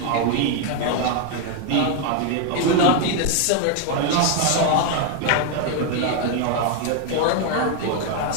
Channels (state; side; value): different; both; correlation 0.01